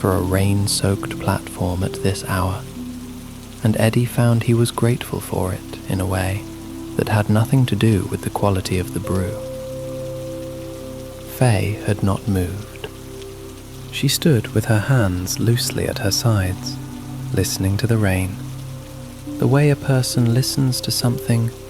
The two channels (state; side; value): identical; both; correlation 1.00